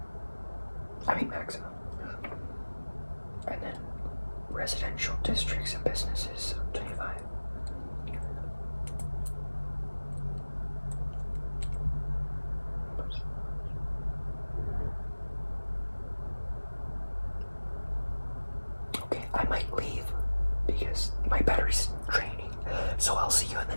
I mean maximum. And then residential districts and businesses, 25. Okay, I might leave because my battery's draining. So I'll see you in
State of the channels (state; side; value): inverted; both; correlation -1.00